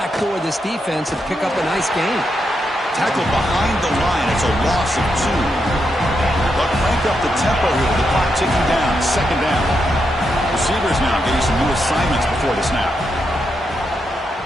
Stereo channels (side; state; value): both; normal; correlation 0.83